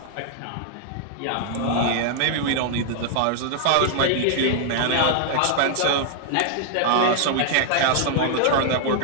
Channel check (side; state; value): both; different; correlation -0.01